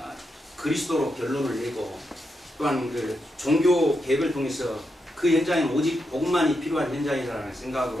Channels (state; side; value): normal; both; correlation 0.84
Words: 그리스도로 결론을 내고 또한 그 종교 개혁을 통해서 그 현장에 오직 복음만이 필요한 현장이라는